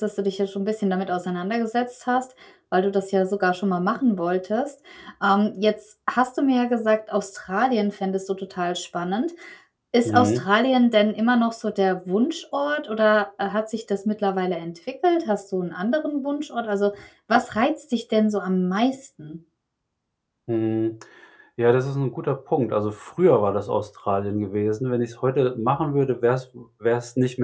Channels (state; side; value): identical; both; correlation 1.00